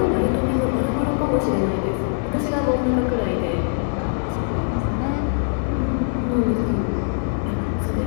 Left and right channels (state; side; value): silent; right; digital silence